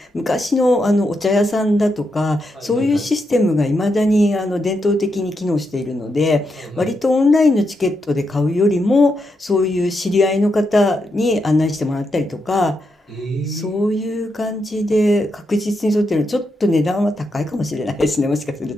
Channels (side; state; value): both; normal; correlation 0.83